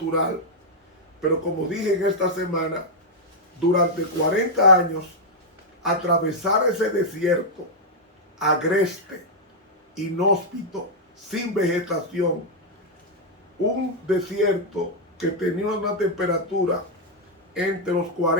pero como dije en esta semana, durante 40 años atravesar ese desierto agreste, inhóspito, sin vegetación, un desierto que tenía una temperatura entre los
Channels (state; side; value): normal; both; correlation -0.03